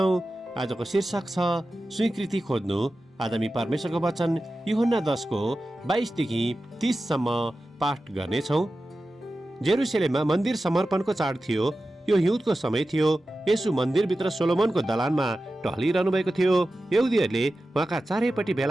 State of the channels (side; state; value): both; normal; correlation 0.93